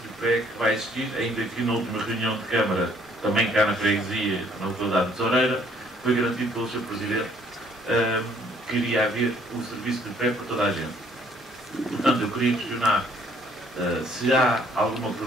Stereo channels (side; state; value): both; normal; correlation 0.62